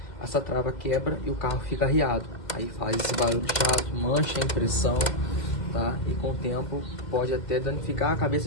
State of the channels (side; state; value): right; late; 2.3 ms